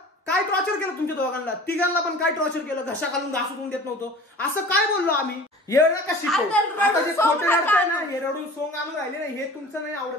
काय टॉर्चर केलं तुमच्या दोघांना? तिघांना पण काय टॉर्चर केलं? घशा घालून घासून देत नव्हतो असं काय बोललो आम्ही? येणं का शिकव? आता जे खोटे रडताय ना हे रडून सोंग आणून राहिले ना हे तुमचं नाही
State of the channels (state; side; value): normal; both; correlation 0.42